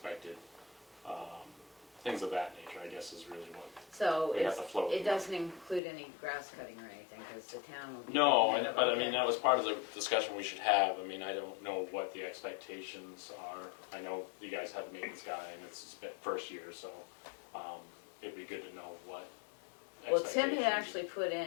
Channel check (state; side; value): drops out; right; at 5.8 s